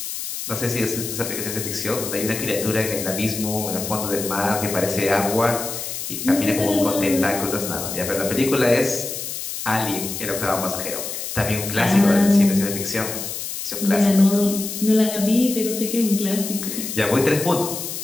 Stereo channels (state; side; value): noise; left; hiss, 6 dB below the sound